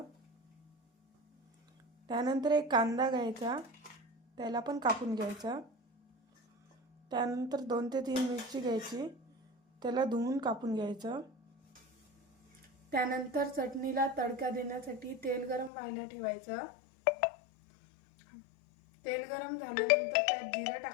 त्यानंतर एक कांदा घ्यायचा, त्याला पण कापून घ्यायचा। त्यानंतर 2 ते 3 मिरची घ्यायची, त्याला धुवून कापून घ्यायचं। त्यानंतर चटणीला तडका देण्यासाठी तेल गरम व्हायला ठेवायचं। तेल गरम झाल्यानंतर त्यात जिरं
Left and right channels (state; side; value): drops out; right; at 15.7 s